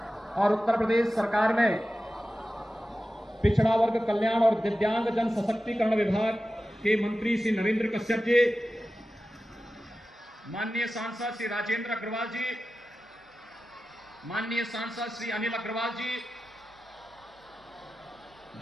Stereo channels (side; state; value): both; normal; correlation 0.94